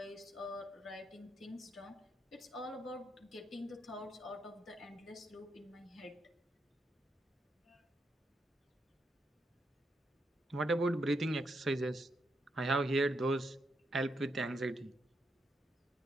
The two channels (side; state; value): both; normal; correlation 0.81